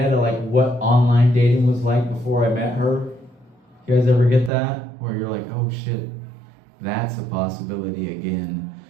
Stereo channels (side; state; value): left; drops out; at 4.5 s